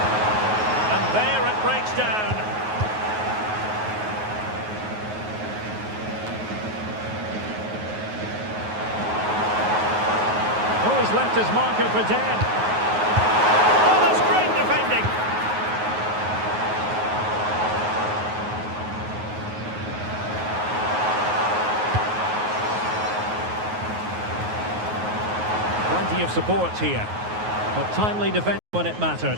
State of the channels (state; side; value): late; left; 9.4 ms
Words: And there it breaks down. Oh, he's left his marker for dead. Oh, that's great defending. Plenty of support here, but timely defense when it mattered.